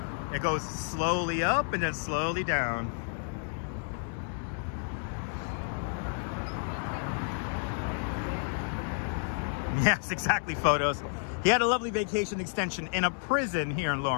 It goes slowly up and then slowly down. Yes, exactly, photos. He had a lovely vacation extension in a prison here in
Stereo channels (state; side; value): silent; right; 57 dB below the other